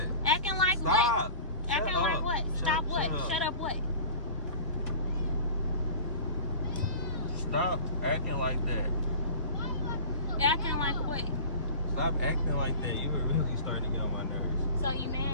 Acting like Stop. what? Acting Shut like up. what? Stop what? Shut up. Shut up what? Stop acting like that. Acting like what? Stop acting like that. You were really starting to get on my nerves. So you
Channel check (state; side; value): inverted; both; correlation -0.38